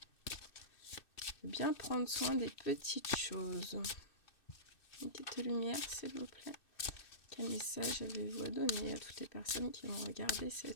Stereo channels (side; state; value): right; late; 2.6 ms